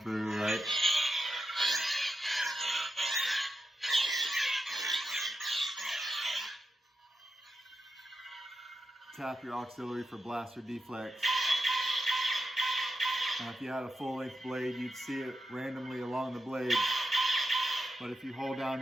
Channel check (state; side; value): normal; both; correlation 0.88